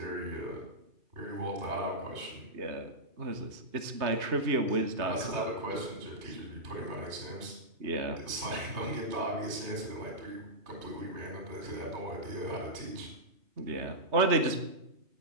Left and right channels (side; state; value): left; late; 3.2 ms